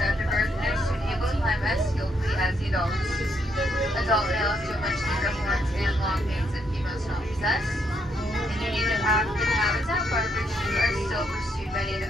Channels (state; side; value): normal; both; correlation 0.75